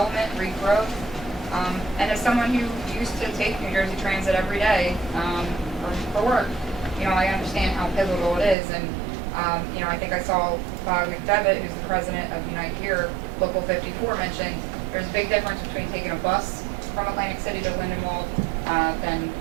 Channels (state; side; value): drops out; left; at 8.6 s